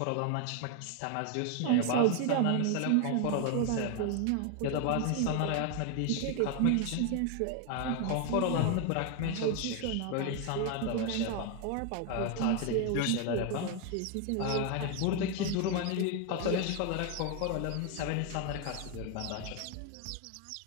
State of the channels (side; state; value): both; different; correlation 0.01